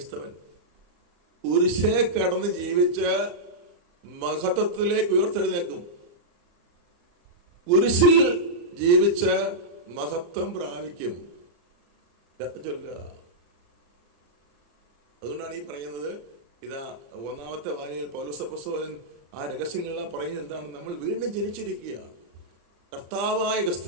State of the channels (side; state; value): left; late; 34 ms